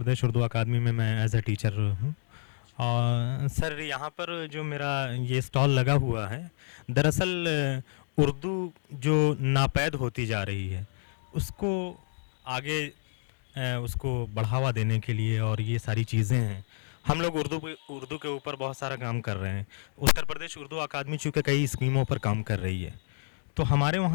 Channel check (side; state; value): right; silent; digital silence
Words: उर्दू अकादमी में मैं एज ए टीचर हूँ। और सर यहाँ पर जो मेरा ये स्टॉल लगा हुआ है, दरअसल उर्दू जो नापैद होती जा रही है उसको आगे उसको बढ़ावा देने के लिए, और ये सारी चीज़ें हैं, हम लोग उर्दू के ऊपर बहुत सारा काम कर रहे हैं। उत्तर प्रदेश उर्दू अकादमी चूँकि कई स्कीमों पर काम कर रही है, तो हमारे